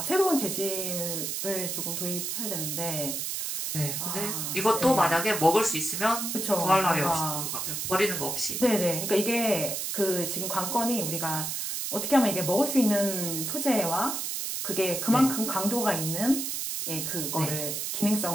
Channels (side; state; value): right; noise; hiss, 3 dB below the sound